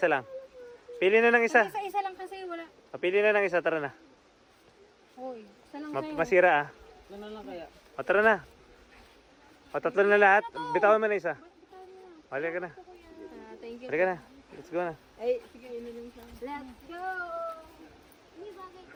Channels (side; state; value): both; identical; correlation 1.00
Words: lang. Pili na ng isa. Isa-isa lang kasi wala. Pili na ng isa, tara na. Uy, isa lang sa'yo. Masira ah. Ano lang kaya? O tara na. O tatlo na lahat. Bitawan mo na isa. Halika na. Thank you. Halika na. Let's go na. Ay, sige, ino lang siya. Let's go! Hindi bagay